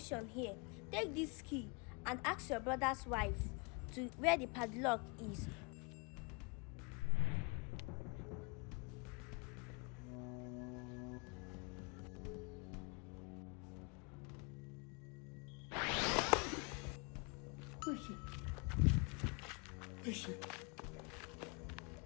here. Take this key and ask your brother's wife to where the padlock is. Where is she? Where is she?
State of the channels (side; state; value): right; quieter; 31.6 dB